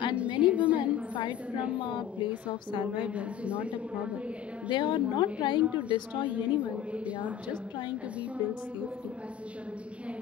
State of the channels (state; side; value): quieter; right; 9.7 dB